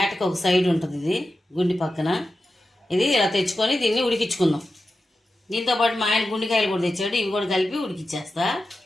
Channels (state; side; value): normal; both; correlation 0.92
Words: ఒక సైడ్ ఉంటుంది, ఇది గుండి పక్కన. ఇది ఇలా తెచ్చుకొని దీన్ని ఉడికించుకుందాం. దీంతోపాటు మా ఆయన గుండికాయలు కూడా తెచ్చాడు, ఇవి కూడా కలిపి ఉడికిచ్చేస్తా.